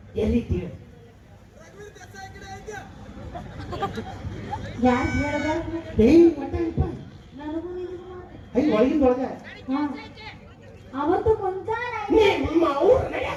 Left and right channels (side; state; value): both; identical; correlation 1.00